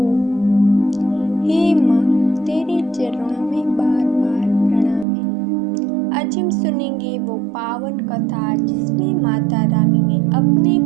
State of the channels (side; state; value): left; drops out; at 5.1 s